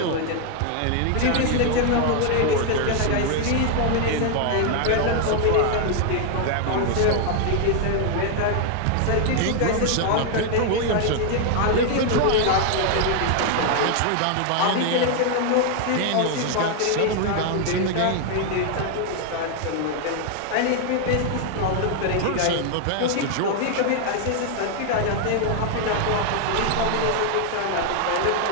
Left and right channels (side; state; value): both; different; correlation 0.00